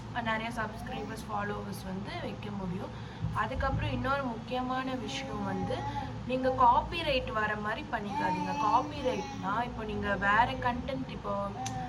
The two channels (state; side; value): identical; both; correlation 1.00